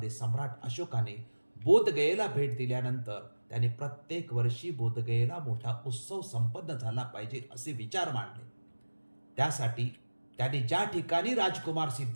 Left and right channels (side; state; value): both; inverted; correlation -1.00